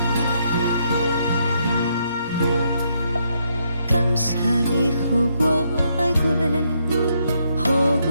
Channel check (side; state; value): both; inverted; correlation -0.75